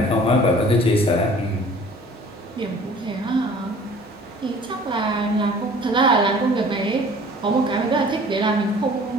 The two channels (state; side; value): normal; both; correlation 0.49